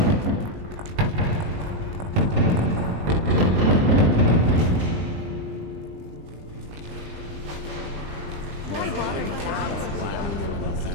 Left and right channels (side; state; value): left; late; 20 ms